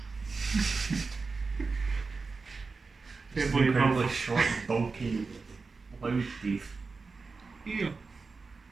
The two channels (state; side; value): quieter; left; 4.3 dB